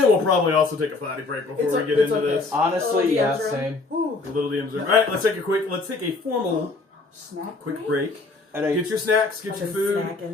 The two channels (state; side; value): quieter; right; 3.6 dB